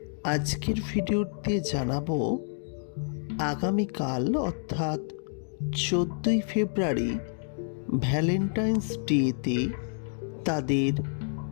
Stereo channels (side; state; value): right; silent; digital silence